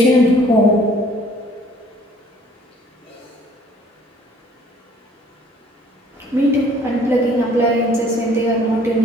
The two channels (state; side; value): normal; both; correlation 0.57